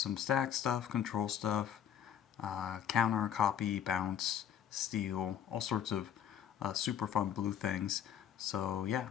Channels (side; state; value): right; quieter; 9.2 dB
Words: some stack stuff, control stuff, counter, copy, bounce, steal, all sorts of super fun blue things. So yeah,